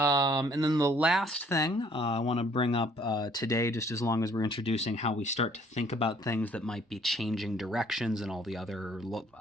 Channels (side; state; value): both; normal; correlation 0.60